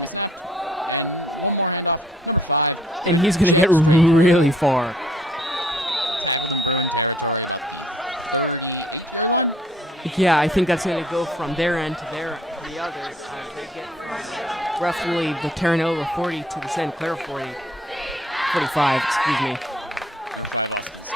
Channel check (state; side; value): normal; both; correlation 0.59